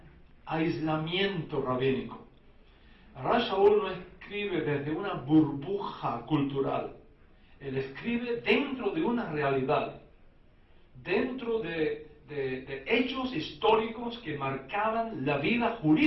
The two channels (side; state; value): both; identical; correlation 1.00